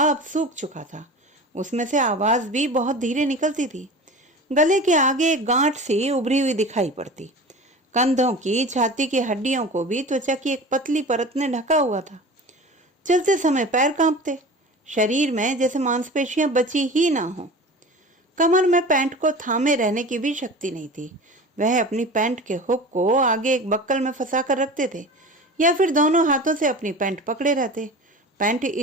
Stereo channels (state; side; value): normal; both; correlation 0.35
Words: अब सूख चुका था। उसमें से आवाज भी बहुत धीरे निकलती थी। गले के आगे एक गांठ सी उभरी हुई दिखाई पड़ती। कंधों की, छाती की हड्डियों को भी त्वचा की एक पतली परत ने ढका हुआ था। चलते समय पैर कांपते, शरीर में जैसे मांसपेशियां बची ही ना हो। कमर में पैंट को थामे रहने की भी शक्ति नहीं थी। वह अपनी पैंट के हुक को आगे एक बक्कल में फंसा कर रखते थे या फिर दोनों हाथों से अपनी पैंट पकड़े रहते। पैंट